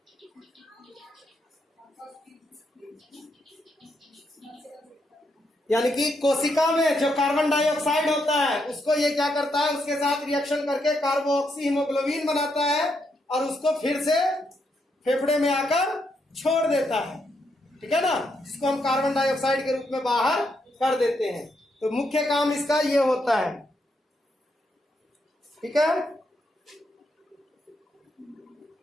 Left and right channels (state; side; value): normal; both; correlation 0.79